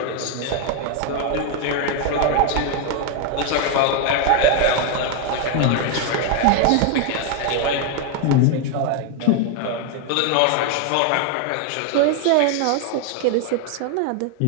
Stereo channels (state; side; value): different; both; correlation 0.01